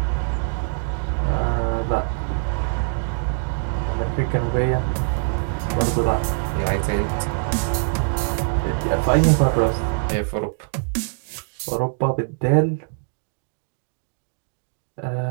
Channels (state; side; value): silent; left; digital silence